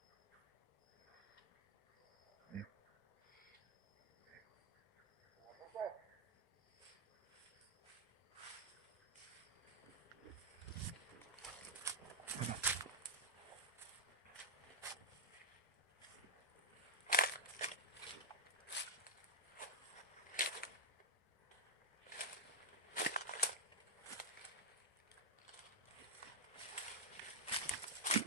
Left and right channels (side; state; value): both; normal; correlation -0.05